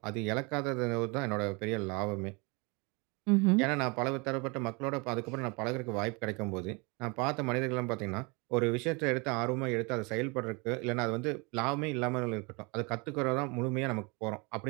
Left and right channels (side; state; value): left; quieter; 29.5 dB